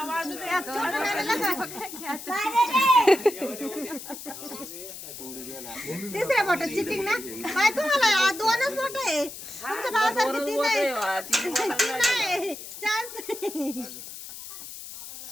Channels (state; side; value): noise; left; hiss, 12 dB below the sound